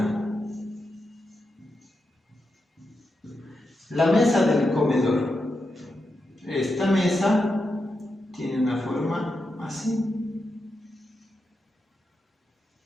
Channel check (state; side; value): normal; both; correlation 0.87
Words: La mesa del comedor. Esta mesa tiene una forma así.